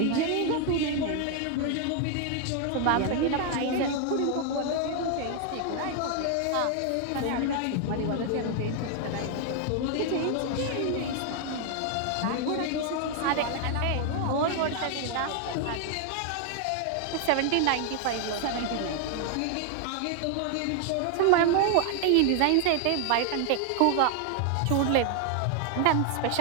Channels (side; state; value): both; different; correlation 0.00